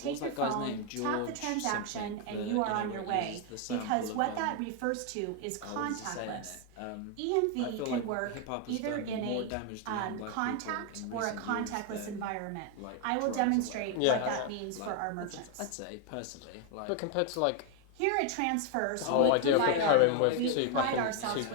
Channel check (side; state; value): both; different; correlation 0.01